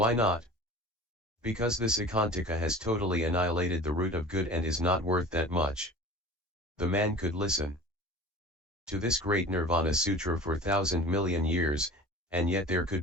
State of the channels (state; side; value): normal; both; correlation 0.39